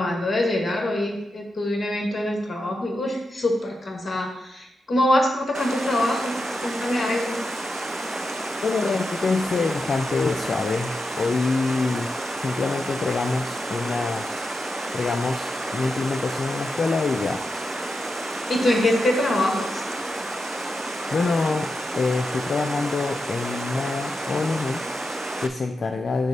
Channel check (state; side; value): normal; both; correlation 0.88